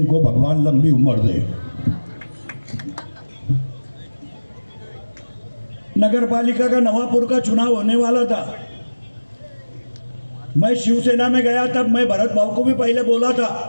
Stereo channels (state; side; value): inverted; both; correlation -1.00